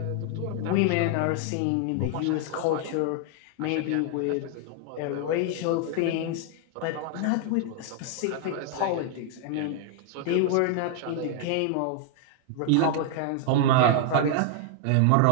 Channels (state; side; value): different; both; correlation 0.00